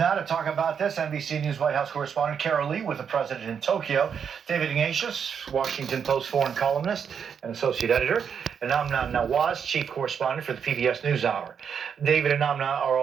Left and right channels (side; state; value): left; quieter; 7.2 dB